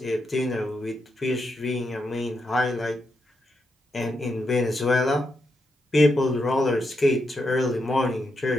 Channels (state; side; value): normal; both; correlation 0.83